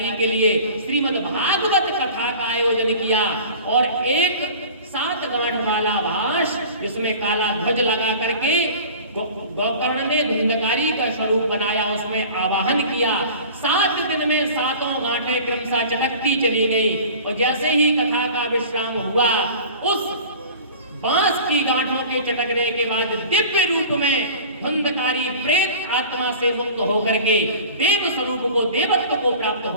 के लिए श्रीमद् भागवत कथा कथा का आयोजन किया और एक 7 गांठ वाला भाष जिसमें काला ध्वज लगा करके गोकर्ण ने धुंधकारी का स्वरूप बनाया, उसमें आवाहन किया। 7 दिन में 7 गांठें क्रमशः चटकती चली गई और जैसे ही कथा का विश्राम हुआ, उस बांस की गांठों के चटकने के बाद दिव्य रूप में धुंधकारी प्रेत आत्मा से मुक्त होकर के देव स्वरूप को, देवत्व को प्राप्त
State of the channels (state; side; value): inverted; both; correlation -0.41